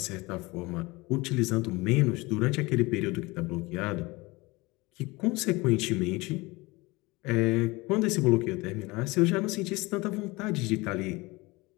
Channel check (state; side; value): quieter; right; 23.1 dB